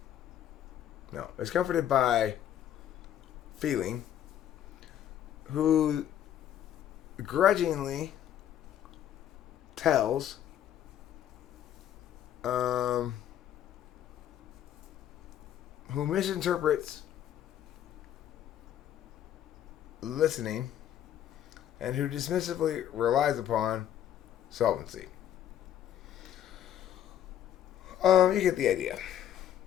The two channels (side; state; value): right; quieter; 10.8 dB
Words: is comforted by feeling, who grudgingly tells, who misinterprets listening, and who dismissively relies upon solvency. You get the idea.